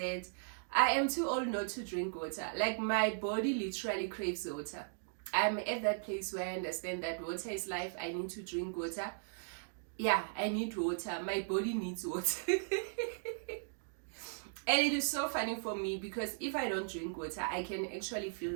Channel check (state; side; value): silent; left; digital silence